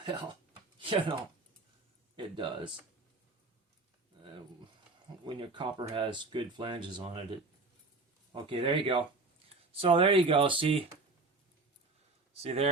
Well, you know, it does. When your copper has good flanges on it, okay, there you go. So there you go. See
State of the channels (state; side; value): quieter; left; 3.5 dB